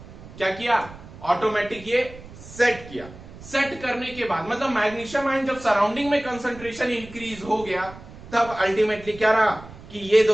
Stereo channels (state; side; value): noise; right; rumble, 17 dB below the sound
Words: क्या किया, ऑटोमेटिक ये सेट किया। सेट करने के बाद मतलब मैग्नीशियम आयन जब सराउंडिंग में कंसंट्रेशन इंक्रीज हो गया तब अल्टीमेटली क्या रहा कि ये